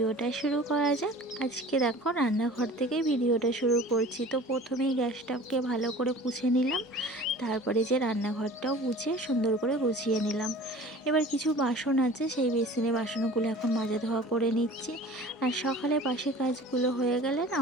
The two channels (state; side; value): normal; both; correlation 0.43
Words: শুরু করা যাক। আজকে দেখো রান্নাঘর থেকে ভিডিওটা শুরু করছি। তো প্রথমেই গ্যাসটাকে ভালো করে পুছে নিলাম, তারপরে যে রান্নাঘরটাও পুছে সুন্দর করে গুছিয়ে নিলাম। এবার কিছু বাসন আছে, সেই বেসিনে বাসনগুলো এখন মাজা ধোয়া করে নিচ্ছি। আর সকালে বাসি কাজগুলো হয়ে গেলে না